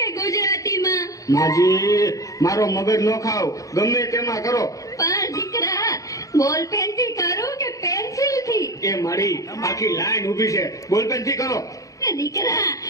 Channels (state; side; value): late; right; 0.16 ms